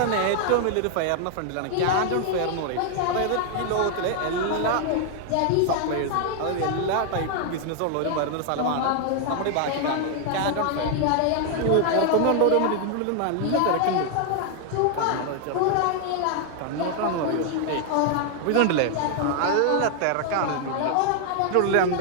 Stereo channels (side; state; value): both; different; correlation 0.00